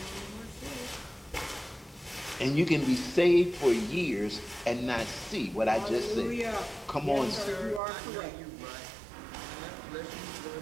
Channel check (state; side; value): drops out; left; at 7.8 s